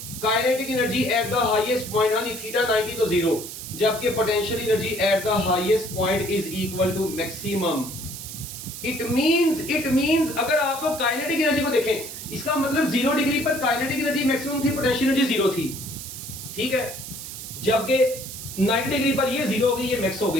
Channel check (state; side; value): noise; right; hiss, 10 dB below the sound